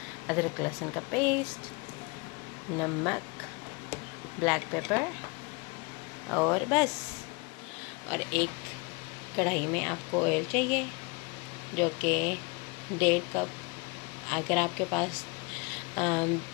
अदरक लहसुन का पेस्ट, नमक, ब्लैक पेपर और बस। और एक कढ़ाई में आपको ऑयल चाहिए जो कि 1.5 कप। अगर आपके पास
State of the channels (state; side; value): quieter; right; 29.0 dB